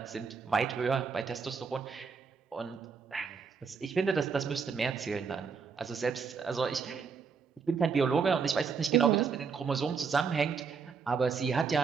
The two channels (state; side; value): quieter; left; 5.6 dB